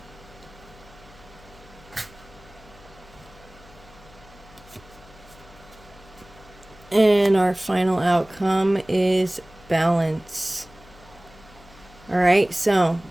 And our final outcome is balance. All right, so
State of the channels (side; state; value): left; noise; hum, 23 dB below the sound